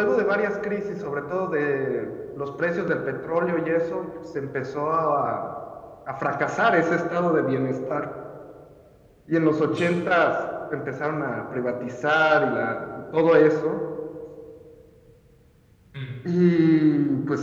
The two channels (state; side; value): identical; both; correlation 1.00